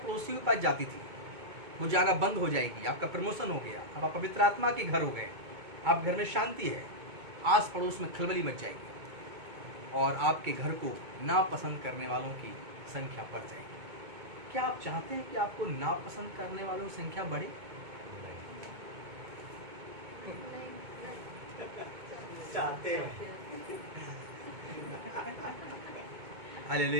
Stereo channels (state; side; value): late; left; 2.2 ms